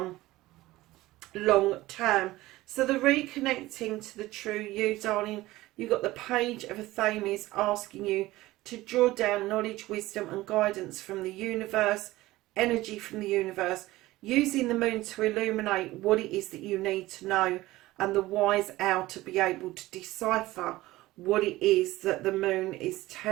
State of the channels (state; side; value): quieter; left; 17.8 dB